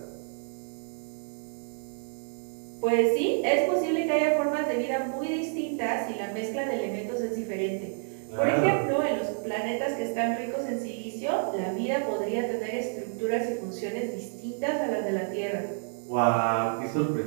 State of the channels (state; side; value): silent; left; 59 dB below the other